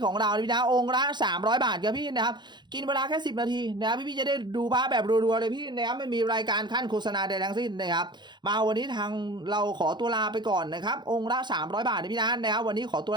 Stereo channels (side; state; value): left; late; 0.21 ms